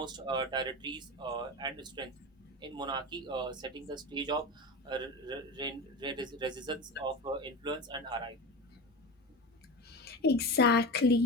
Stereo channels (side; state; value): both; normal; correlation 0.26